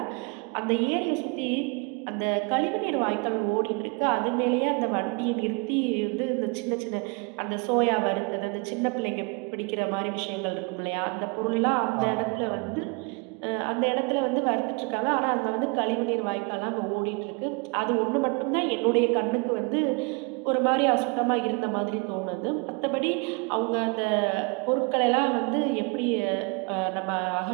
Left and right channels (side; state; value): left; quieter; 31.5 dB